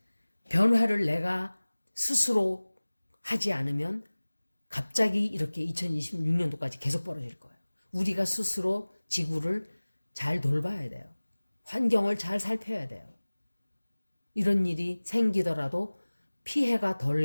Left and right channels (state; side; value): inverted; both; correlation -1.00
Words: 변화를 내가 스스로 하지 않으면 갑자기 이렇게 2026년도까지 계속 벌어질 거예요. 우리가 스스로 지구를 잘 돌봐야 돼요. 환경을 잘 살펴야 돼요. 이런 일이 생기더라도 피해가 덜